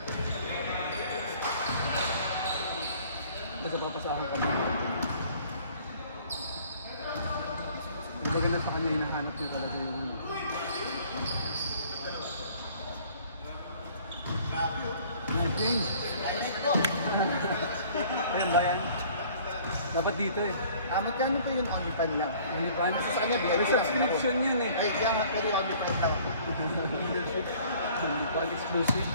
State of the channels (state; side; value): inverted; both; correlation -0.54